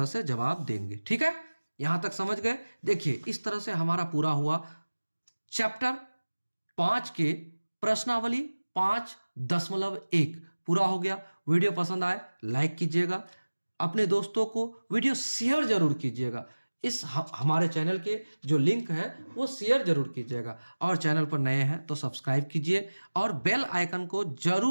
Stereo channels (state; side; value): inverted; both; correlation -1.00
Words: से जवाब देंगे। ठीक है, यहां तक समझ गए? देखिए, इस तरह से हमारा पूरा हुआ चैप्टर 5 के प्रश्नावली 5.1 पूरा हो गया। वीडियो पसंद आए लाइक कीजिएगा, अपने दोस्तों को वीडियो शेयर जरूर कीजिएगा। इस हमारे चैनल के जो लिंक है वो शेयर जरूर कीजिएगा, और चैनल पर नए हैं तो सब्सक्राइब कीजिए और बेल आइकन को